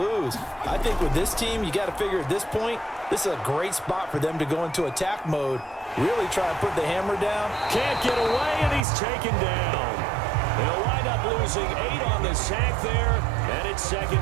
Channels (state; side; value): drops out; left; at 8.8 s